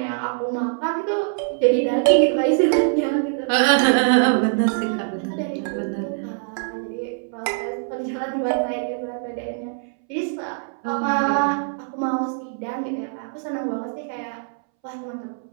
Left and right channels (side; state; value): left; silent; 63 dB below the other